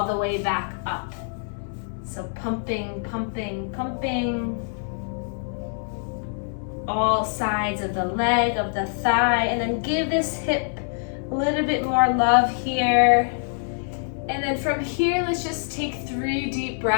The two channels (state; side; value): silent; right; 62 dB below the other